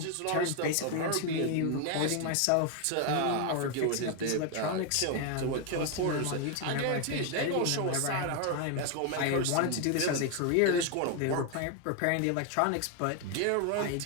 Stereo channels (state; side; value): different; both; correlation 0.01